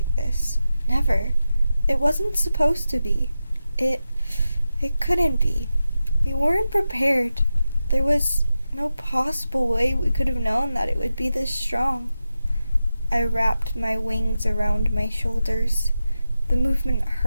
this. Never. It wasn't supposed to be. It couldn't be. We weren't prepared. There was no possible way we could have known that it would be this strong. I wrapped my wings around my shoulders. The movement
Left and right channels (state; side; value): inverted; both; correlation -0.92